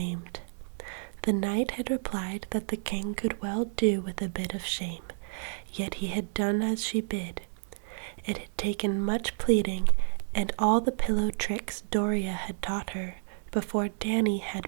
The knight had replied that the king could well do with a bit of shame, yet he had done as she bid. It had taken much pleading and all the pillow tricks Doria had taught her before Danny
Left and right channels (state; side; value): silent; left; digital silence